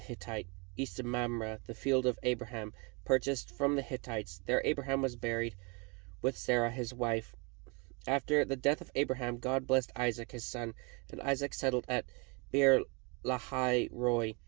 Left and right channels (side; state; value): left; quieter; 31.4 dB